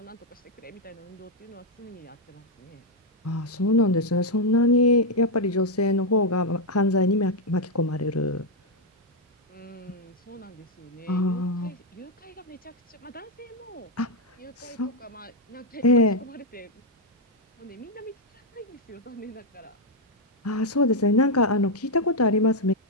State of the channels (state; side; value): normal; both; correlation 0.01